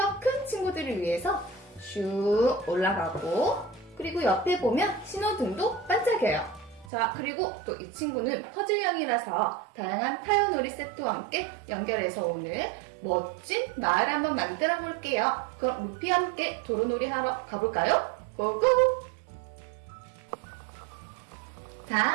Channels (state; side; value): drops out; left; at 6.9 s